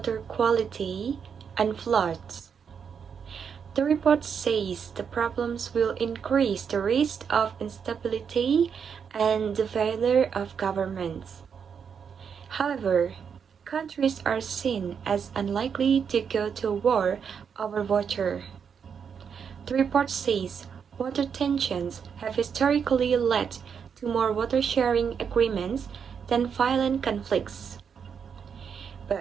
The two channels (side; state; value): left; quieter; 6.9 dB